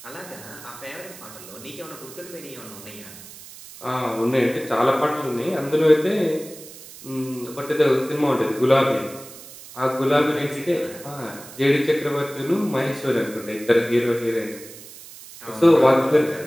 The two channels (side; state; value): right; noise; hiss, 17 dB below the sound